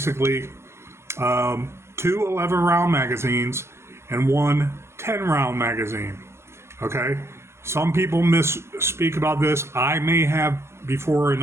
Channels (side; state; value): left; late; 0.13 ms